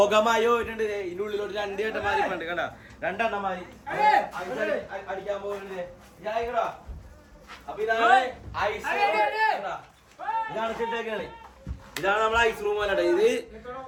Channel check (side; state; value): both; identical; correlation 1.00